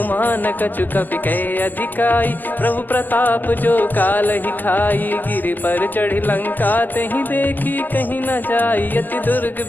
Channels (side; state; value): right; late; 0.086 ms